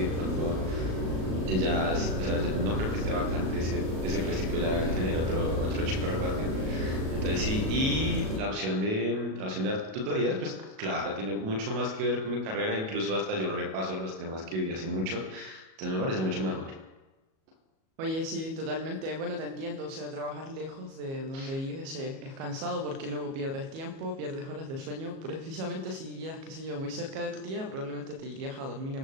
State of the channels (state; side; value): late; left; 37 ms